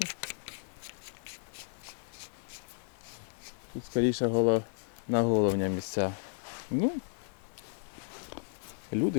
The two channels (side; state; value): right; silent; 55 dB below the other